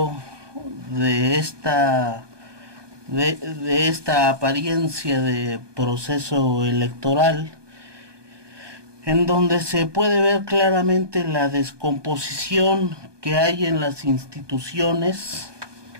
de esta apariencia de proceso electoral, en donde se puede ver claramente la descomposición que hay en las instituciones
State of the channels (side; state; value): left; late; 1.2 ms